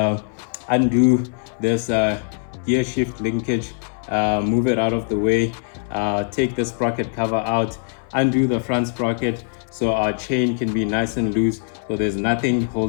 undo this gear shift linkage, move it out of the way, take the sprocket cover out, undo the front sprocket so our chain can be nice and loose, so there's nothing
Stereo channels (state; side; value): silent; right; 61 dB below the other